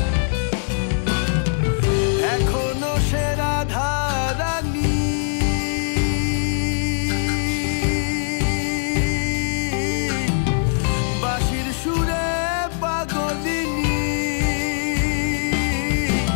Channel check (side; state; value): right; silent; digital silence